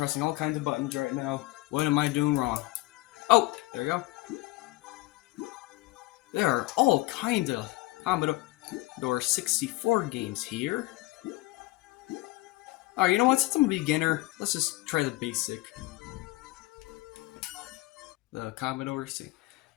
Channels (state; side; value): quieter; right; 20.3 dB